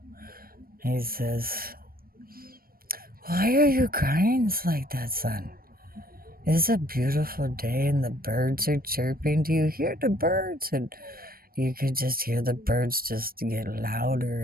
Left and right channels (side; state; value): left; late; 0.43 ms